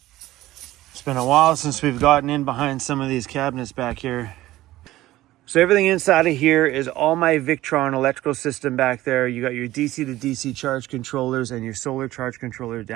It's been a while since we've gotten in behind some of these cabinets back here. So everything inside of here is all my Victron electrical system back there. You got your DC to DC charge controllers and your solar charge controller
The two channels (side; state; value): left; quieter; 16.1 dB